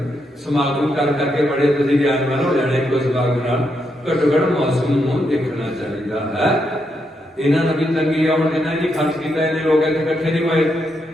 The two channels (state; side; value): normal; both; correlation 0.81